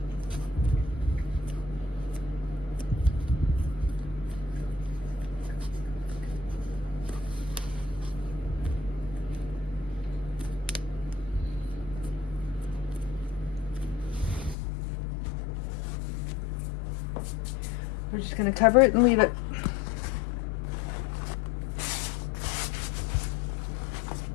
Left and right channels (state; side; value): drops out; right; at 14.6 s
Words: We're just going to cover it and leave it.